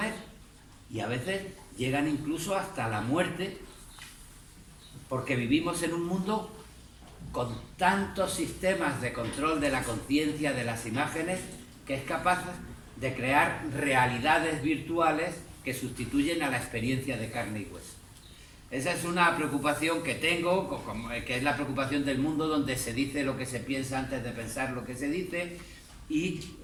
y a veces llegan incluso hasta la muerte porque vivimos en un mundo con tantos sistemas de control de la conciencia, de las imágenes, que es capaz de crear realidades virtuales que sustituyen a la experiencia de carne y hueso. Esa es una preocupación que tengo, que es la preocupación del mundo donde se dice lo que se piensa antes de pensar lo que se dice y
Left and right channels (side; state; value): both; identical; correlation 1.00